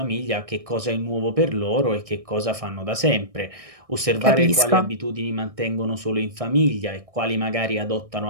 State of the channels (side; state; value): left; late; 1.6 ms